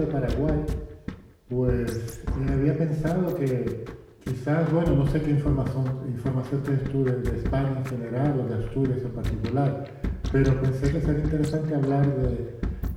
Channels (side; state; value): both; identical; correlation 1.00